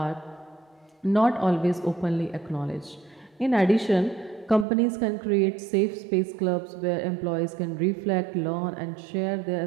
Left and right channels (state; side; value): drops out; left; at 4.7 s